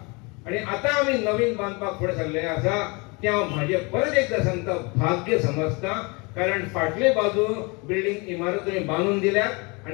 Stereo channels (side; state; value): right; quieter; 28.9 dB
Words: आणि आता आमी नवीन बांदपाक फुडें सरले आसा ते हांव म्हाजे परत एकदा सांगता भाग्य समजता, कारण फाटले बाजू बिल्डींग इमारत तुम्ही बांदून दिल्यात